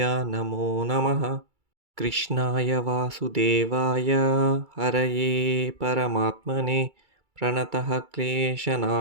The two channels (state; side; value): late; left; 2.3 ms